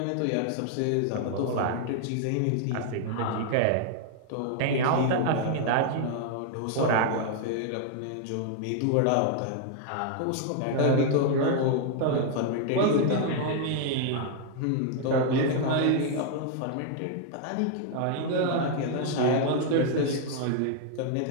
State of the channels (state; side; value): different; both; correlation 0.00